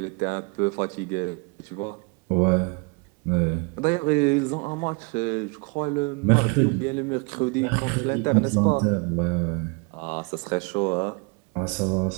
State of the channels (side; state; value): left; quieter; 31.6 dB